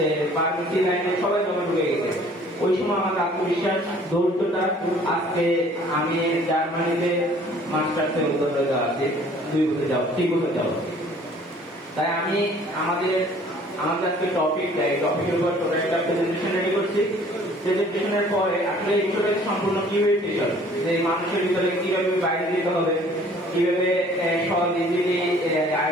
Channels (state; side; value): normal; both; correlation 0.54